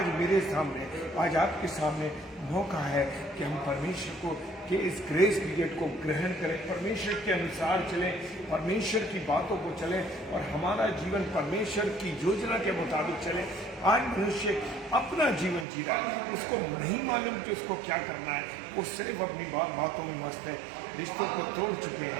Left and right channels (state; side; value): drops out; left; at 15.7 s